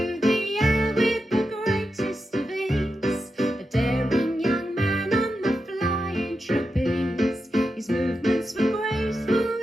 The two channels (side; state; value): both; normal; correlation 0.88